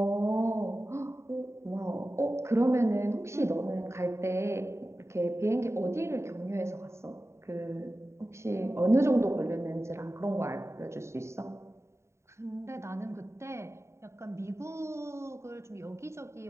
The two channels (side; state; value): left; late; 0.13 ms